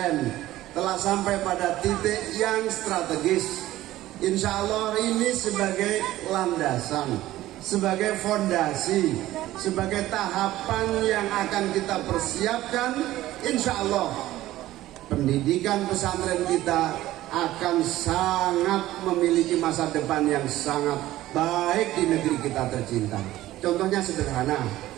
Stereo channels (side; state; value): left; quieter; 15.4 dB